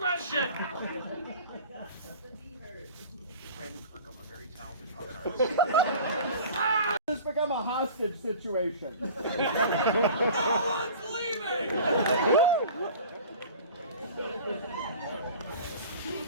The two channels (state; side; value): inverted; both; correlation -0.41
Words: Brandon Kirkham, a very talented puppet artist. This become a hostage situation. No one's leaving.